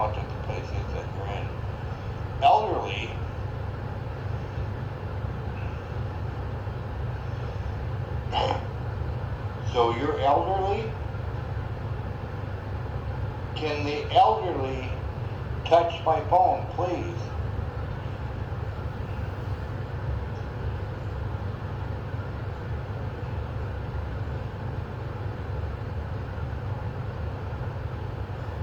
the place is that you're in. Elderly, so you're elderly? Can the elderly touch my phone, please?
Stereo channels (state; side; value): identical; both; correlation 1.00